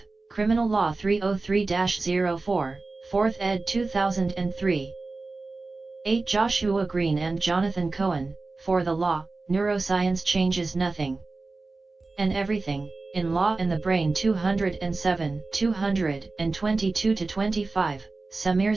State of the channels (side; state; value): left; quieter; 3.6 dB